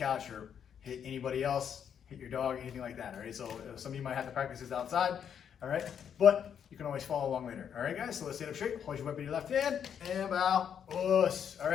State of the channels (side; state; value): right; quieter; 8.2 dB